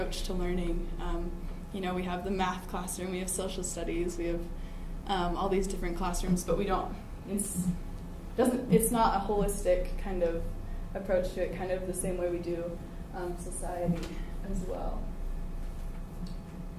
to learning. We have the math classroom, we have social studies, we have all these different classrooms, but we don't, it's not a holistic kind of approach to it, kind of the same way we do society as well.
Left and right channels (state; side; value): identical; both; correlation 1.00